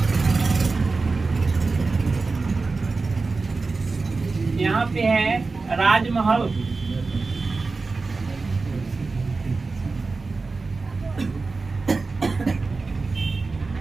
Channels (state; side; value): quieter; left; 4.0 dB